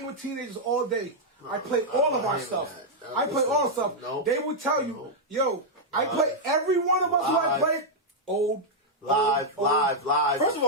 with teenagers all day. I play all of our stuff. I play all the stuff. No. They will tell you, yo, I play every one of us who I play old. Live. first of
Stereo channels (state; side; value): normal; both; correlation -0.04